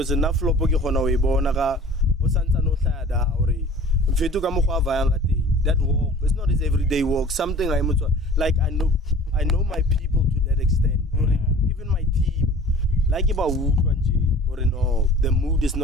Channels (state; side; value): normal; both; correlation 0.45